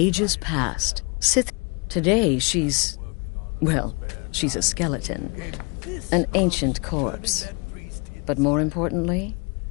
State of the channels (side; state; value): right; quieter; 31.8 dB